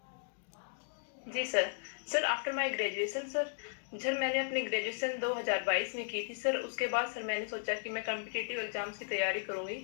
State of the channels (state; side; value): silent; right; digital silence